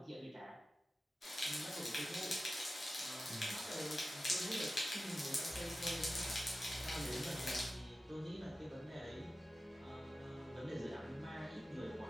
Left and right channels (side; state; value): both; normal; correlation 0.94